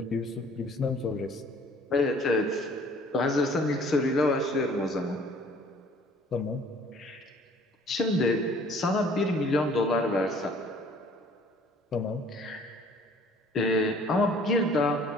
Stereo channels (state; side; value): normal; both; correlation 0.55